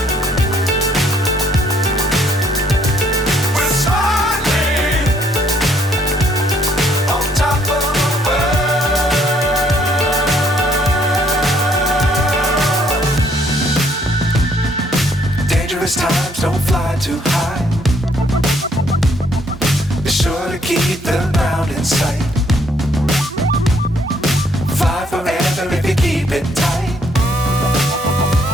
Times don't fly too high. Be sure to keep the ground in sight. Fly forever if you keep it tight.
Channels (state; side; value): normal; both; correlation 0.67